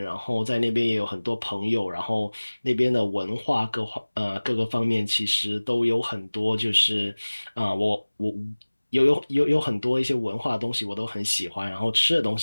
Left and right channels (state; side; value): inverted; both; correlation -1.00